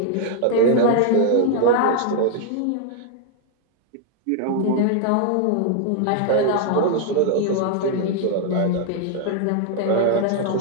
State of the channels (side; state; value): both; different; correlation 0.00